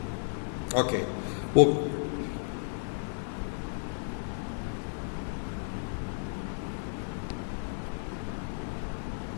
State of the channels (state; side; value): silent; right; digital silence